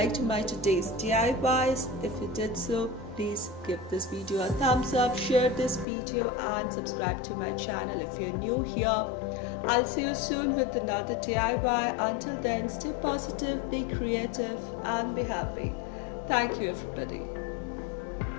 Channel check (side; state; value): right; drops out; at 5.9 s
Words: my today's DIYs. If you did so, please give this video a thumbs up, share this video, and subscribe to my channel if you're new here. I'll see you soon with another DIY. Until then, stay positive, be creative, and be happy. Thank you, everybody.